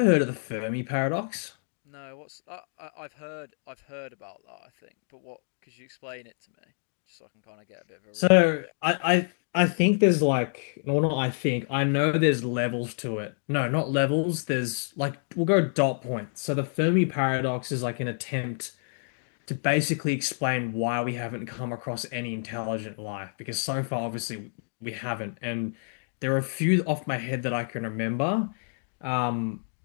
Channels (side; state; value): right; silent; digital silence